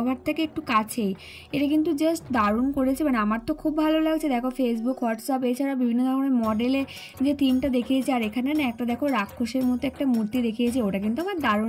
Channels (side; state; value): both; identical; correlation 1.00